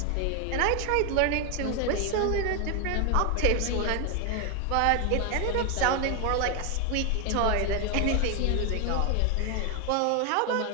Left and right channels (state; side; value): different; both; correlation 0.01